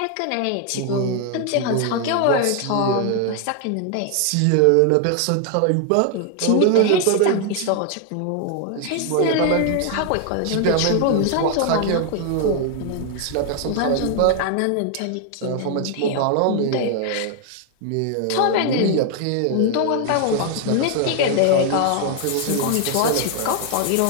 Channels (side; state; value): both; different; correlation 0.00